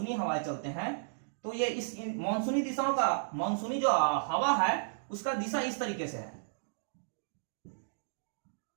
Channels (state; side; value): silent; left; digital silence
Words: हवाएं चलते हैं, तो ये इस मानसूनी दिशाओं का, मानसूनी जो हवा है उसका दिशा इस तरीके से है।